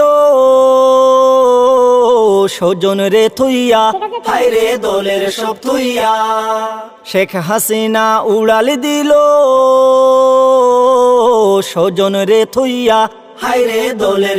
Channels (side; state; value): both; identical; correlation 1.00